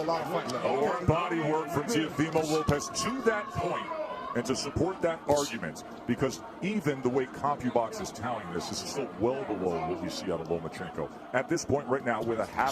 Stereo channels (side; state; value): both; identical; correlation 1.00